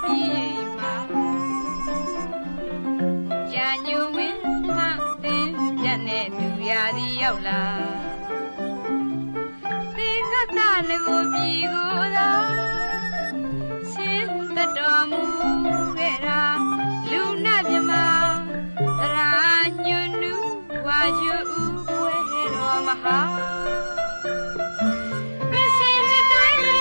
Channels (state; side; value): inverted; both; correlation -1.00